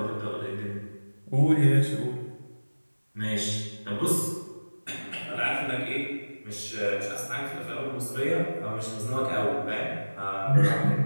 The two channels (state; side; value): inverted; both; correlation -1.00